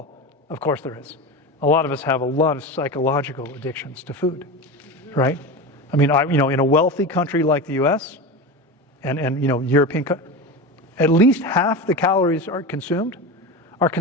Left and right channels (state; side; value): normal; both; correlation 0.24